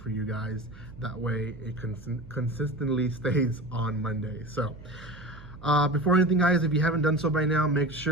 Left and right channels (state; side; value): noise; right; hum, 18 dB below the sound